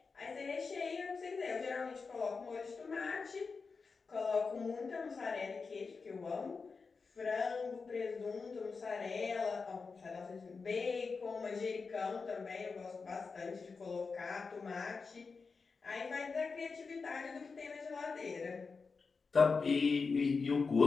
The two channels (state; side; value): quieter; right; 4.7 dB